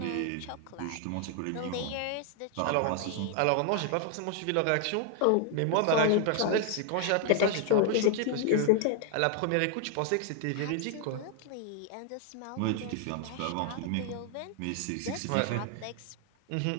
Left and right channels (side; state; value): both; different; correlation 0.00